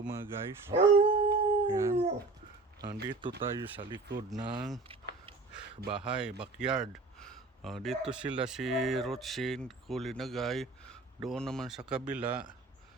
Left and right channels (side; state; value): left; quieter; 3.5 dB